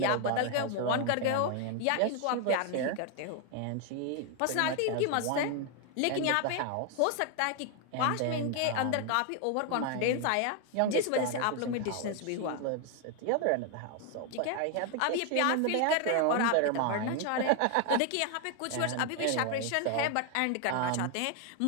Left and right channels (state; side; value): different; both; correlation 0.01